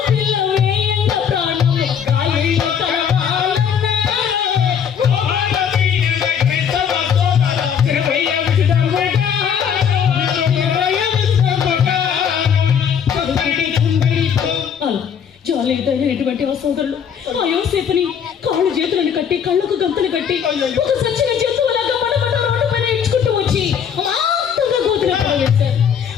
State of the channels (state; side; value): quieter; right; 7.8 dB